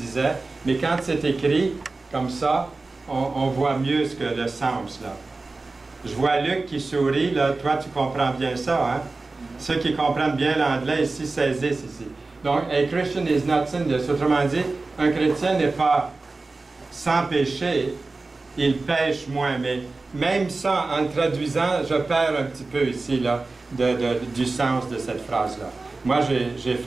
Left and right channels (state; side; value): quieter; left; 3.5 dB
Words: mais quand c'est écrit comme ça, on voit mieux ce que le sens, là. Je vois Luc qui sourit, là. Toi, tu comprends bien ça, hein? Ceux qui comprennent bien l'anglais ici saisissent ici. Donc, a Christian is not sinless. Autrement dit, un chrétien n'est pas sans péché, il pêche moins. Mais même ça, en traduisant, je perds un petit peu ici, là, du sens de cette phrase-là. Moi, j'ai